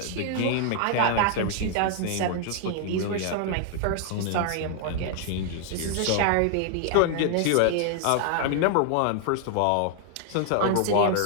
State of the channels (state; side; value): different; both; correlation 0.00